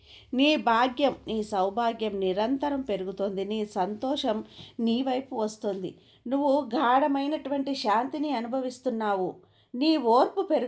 నీ భాగ్యం, నీ సౌభాగ్యం నిరంతరం పెరుగుతోంది. నీ సంతోషం నీ వైపు వస్తుంది. నువ్వు గాఢమైనటువంటి శాంతిని అనుభవిస్తున్నావు. నీ ఓర్పు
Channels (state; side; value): identical; both; correlation 1.00